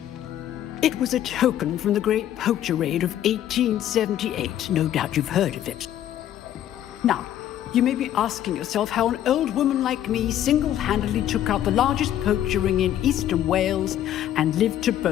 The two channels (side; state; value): right; quieter; 11.6 dB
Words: It was a token from the Great Poacher Raid of 1878. No doubt you've heard of it. Now, you may be asking yourself how an old woman like me single-handedly took out the largest poacher ring in eastern Wales and lived to